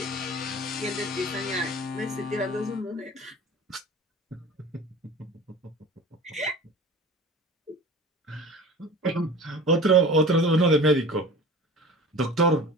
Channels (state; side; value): normal; both; correlation 0.39